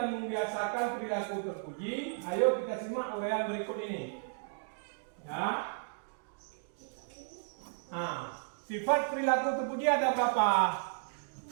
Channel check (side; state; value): left; silent; digital silence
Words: membiasakan perilaku terpuji, ayo kita simak uraian berikut ini. Ya. Sifat perilaku terpuji ada berapa?